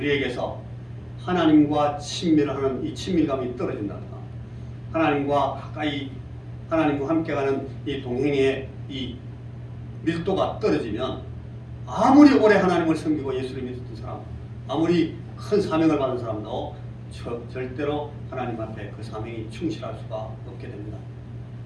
하나님과 친밀하는 이 친밀감이 떨어진다든가 하나님과 가까이 하나님과 함께 가는 이 동행의 이 밀도가 떨어지면 아무리 오래 하나님을 섬기고 예수를 믿었던 사람 아무리 큰 사명을 받은 사람도 절대로 하나님 앞에 그 사명이 충실할 수가 없게 됩니다.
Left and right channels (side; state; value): both; identical; correlation 1.00